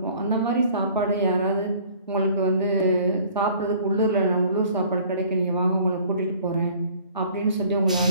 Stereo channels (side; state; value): both; inverted; correlation -0.53